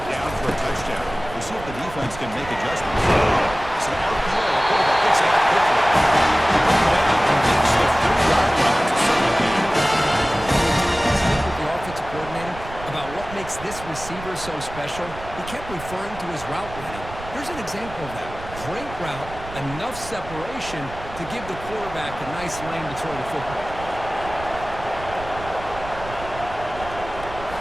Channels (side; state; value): right; noise; rumble, 13 dB below the sound